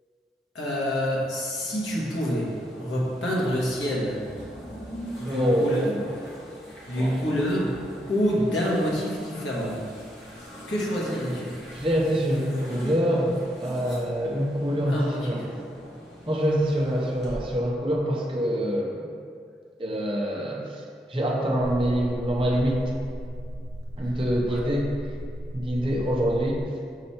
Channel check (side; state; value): both; normal; correlation 0.78